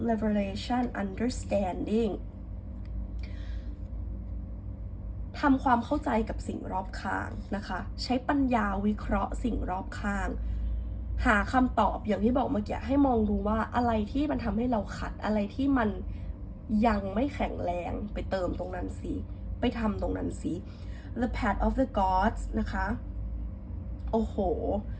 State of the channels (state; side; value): identical; both; correlation 1.00